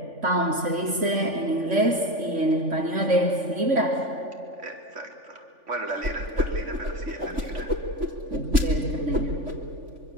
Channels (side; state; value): left; late; 3.5 ms